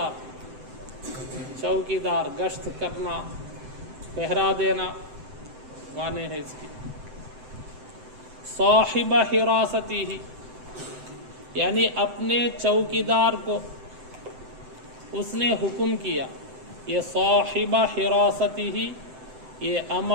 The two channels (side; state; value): left; late; 7.8 ms